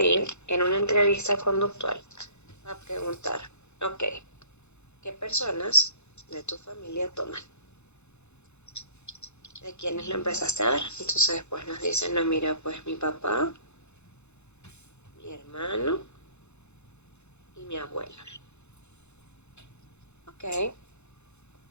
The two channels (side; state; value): right; late; 0.81 ms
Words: ir en una entrevista conductual a preguntar, ok, ¿qué personas de tu familia toman? ¿De quiénes lo empezaste a ver? Entonces después nos dicen, no, mira, pues mi papá, mi hermano y mi abuela. Ok,